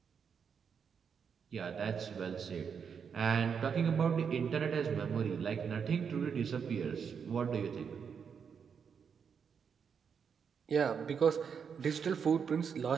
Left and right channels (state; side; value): quieter; left; 6.7 dB